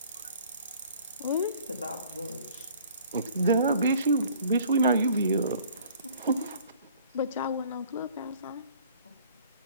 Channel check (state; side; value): inverted; both; correlation -0.53